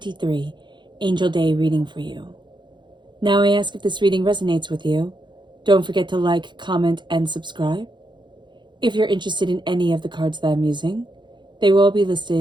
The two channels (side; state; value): left; late; 0.22 ms